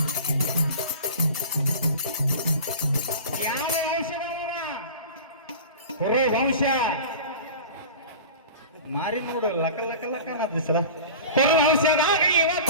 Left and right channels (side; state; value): both; inverted; correlation -0.36